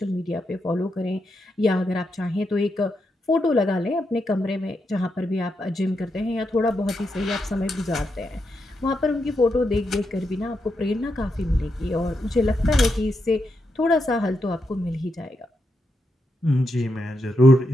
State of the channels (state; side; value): normal; both; correlation 0.84